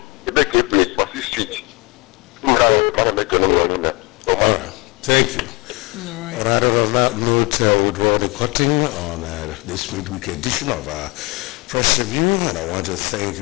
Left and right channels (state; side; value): quieter; right; 27.1 dB